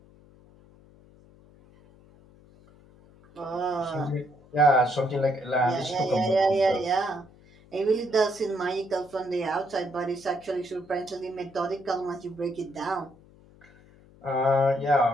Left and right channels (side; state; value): left; noise; hum, 26 dB below the sound